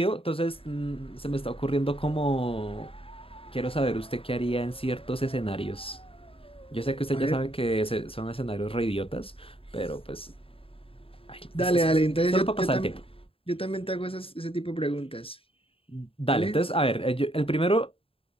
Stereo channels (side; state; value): right; late; 0.27 ms